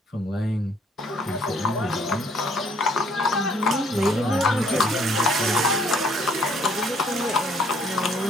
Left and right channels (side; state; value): both; normal; correlation 0.62